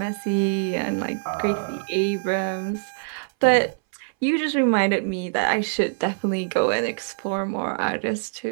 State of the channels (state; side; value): silent; left; 61 dB below the other